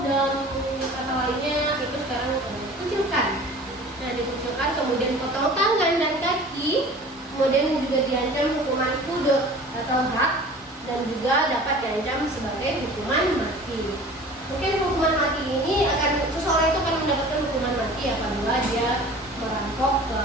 dalam kata lainnya itu sekarang dikucilkan. Nah, dikucilkan kemudian potong tangan dan kaki, kemudian juga diancam hukuman kudut atau hak, dan juga dapat diancam sebagai hukuman mati. Mungkin hukuman mati ini seseorang itu akan mendapatkan hukuman mati apabila dia merampok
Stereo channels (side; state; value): both; normal; correlation 0.43